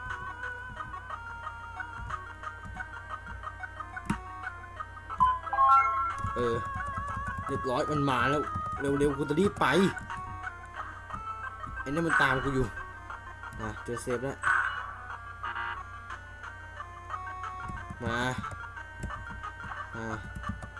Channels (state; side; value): identical; both; correlation 1.00